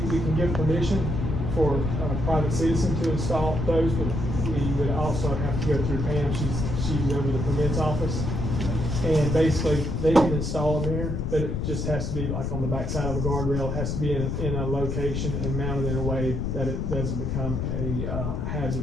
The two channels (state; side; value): noise; left; rumble, 1 dB below the sound